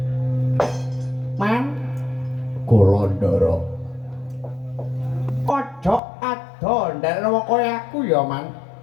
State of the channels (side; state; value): right; drops out; at 6.0 s